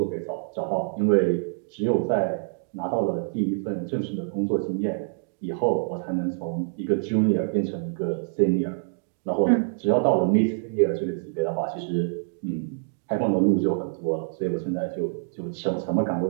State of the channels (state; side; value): silent; left; digital silence